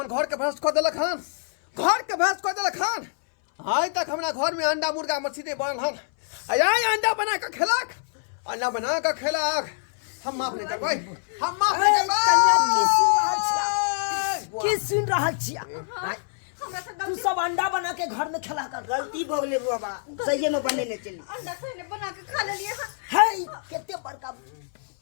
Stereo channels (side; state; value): right; silent; 60 dB below the other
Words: घर के भ्रष्ट कर देलक हन आज तक हमरा घर में अंडा मुर्गा मछली बनल हन आय अंडा बना के खेलक हम माफ नहीं करबै की सुन रहल छियै हमरा सब तू सब अंडा बना के घर में खिला कर गलती भ गेलै बाबा सही में बनेने चली अंडा से बना के खा लेलिए है केते बड़का